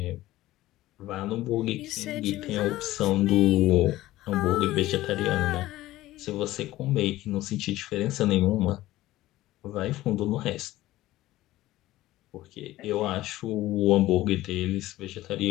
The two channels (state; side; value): quieter; right; 16.3 dB